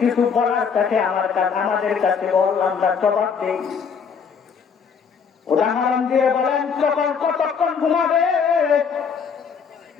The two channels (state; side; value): quieter; right; 6.3 dB